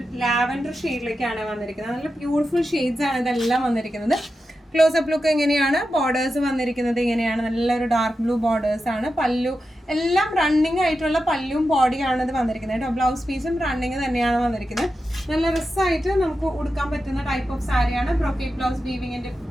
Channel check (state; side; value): normal; both; correlation 0.90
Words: ലാവൻഡർ ഷെയ്ഡിലേക്കാണ് വന്നിരിക്കുന്നത്. നല്ല ബ്യൂട്ടിഫുൾ ഷെയ്ഡ്സ് ആണ് ഇതെല്ലാം വന്നിരിക്കുന്നത്. ക്ലോസപ്പ് ലുക്ക് എങ്ങനെയാണ്? ബോർഡേഴ്സ് വന്നിരിക്കുന്നത് ഇങ്ങനെയാണ്. നല്ലൊരു ഡാർക്ക് ബ്ലൂ ബോർഡേഴ്സ് ആണ്. പല്ലു എല്ലാം റണ്ണിങ് ആയിട്ടുള്ള പല്ലും ബോഡിയാണ് ഇത് വന്നിരിക്കുന്നത് കേട്ടോ. ബ്ലൗസ് പീസും റണ്ണിങ് തന്നെയാണ് വന്നിരിക്കുന്നത്. നല്ല രസമായിട്ട് നമുക്ക് ഉടുക്കാൻ പറ്റുന്ന ടൈപ്പ് ഓഫ് സാരിയാണ്. ബ്രൊക്കേഡ് ബ്ലൗസ് വീവിങ്ങിന്റെ